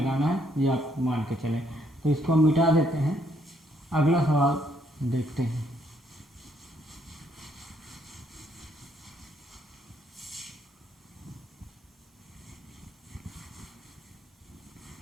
है, ये आप मान के चलें। तो इसको हम मिटा देते हैं, अगला सवाल देखते हैं।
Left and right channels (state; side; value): normal; both; correlation 0.70